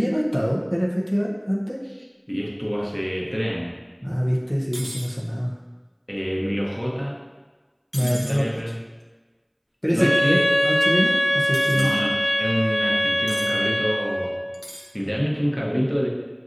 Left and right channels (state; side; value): identical; both; correlation 1.00